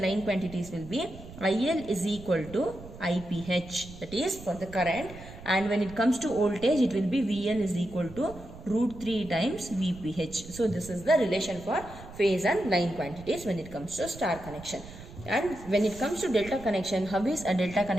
line quantities will be IL is equal to IPH, that is for the current, and when it comes to voltage, it will be VL is equal to root 3 times VPH. So, this is the relation for phase and line quantities when it comes to star connection. And when it comes to delta connection, how is a delta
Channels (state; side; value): noise; right; rumble, 16 dB below the sound